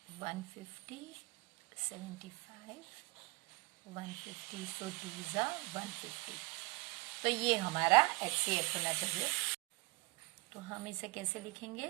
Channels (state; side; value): quieter; left; 25.6 dB